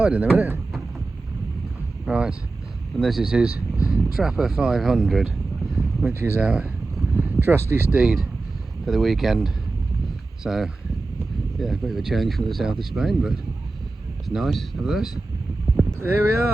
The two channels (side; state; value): left; quieter; 3.4 dB